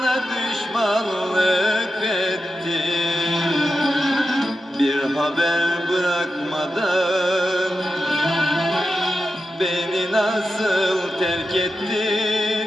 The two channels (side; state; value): both; normal; correlation 0.90